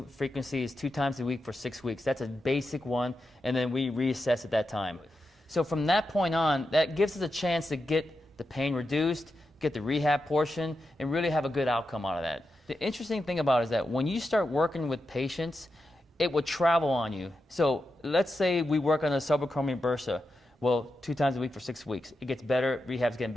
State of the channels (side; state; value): both; normal; correlation 0.88